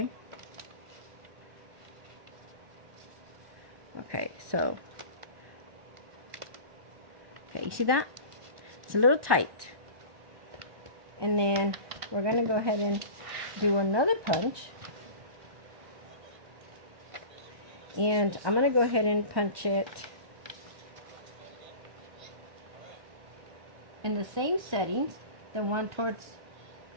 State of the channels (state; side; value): late; left; 1.2 ms